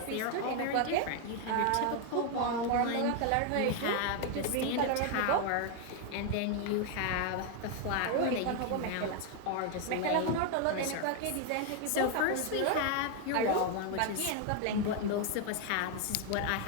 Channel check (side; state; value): both; different; correlation 0.01